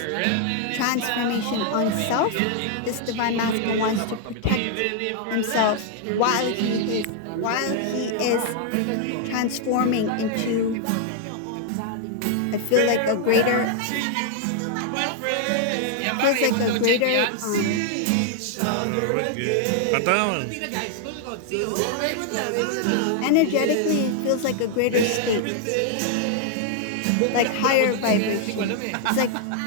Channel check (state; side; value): different; both; correlation 0.00